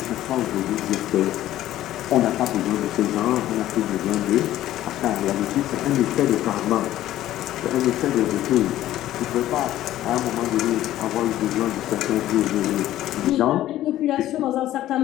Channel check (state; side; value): quieter; right; 13.7 dB